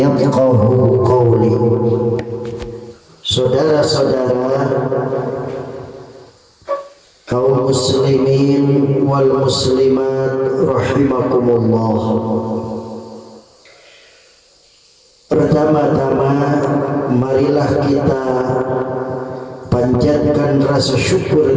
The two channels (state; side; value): identical; both; correlation 1.00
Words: qawli. Saudara-saudara kaum muslimin wal muslimat rahimakumullah. Pertama-tama marilah kita panjatkan rasa